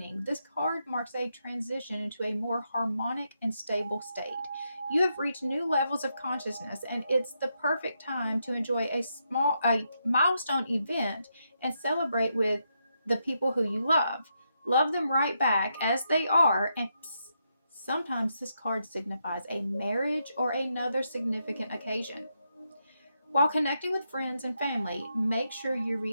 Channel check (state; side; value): inverted; both; correlation -0.81